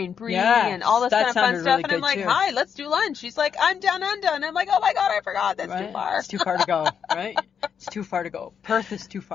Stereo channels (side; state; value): right; quieter; 7.3 dB